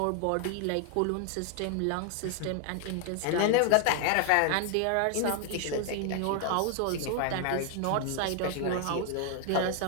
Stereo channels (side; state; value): both; different; correlation 0.00